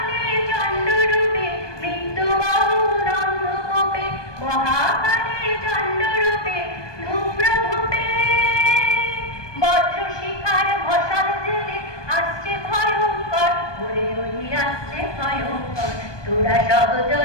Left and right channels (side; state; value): right; late; 1.2 ms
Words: চণ্ডরূপে, মৃত্যু গহন অন্ধকূপে মহাকালের চণ্ডরূপে। ধূম্রধূপে বজ্র শিখার মশাল জেলে আসছে ভয়ঙ্কর, ওরে ওরে আসছে ভয়ঙ্কর। তোরা সব